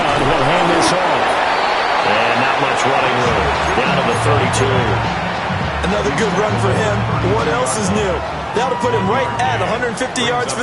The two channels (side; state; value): both; identical; correlation 1.00